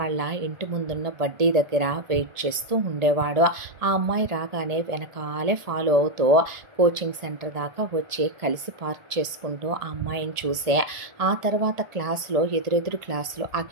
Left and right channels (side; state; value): left; late; 1.8 ms